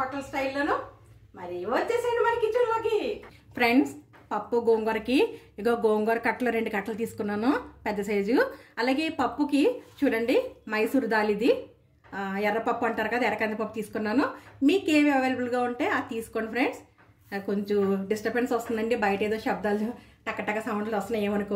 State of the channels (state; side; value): identical; both; correlation 1.00